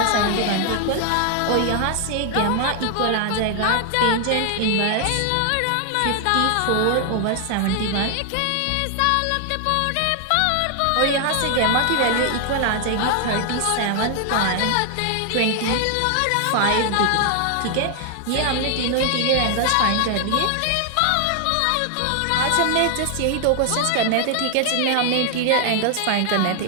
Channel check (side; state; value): both; different; correlation 0.00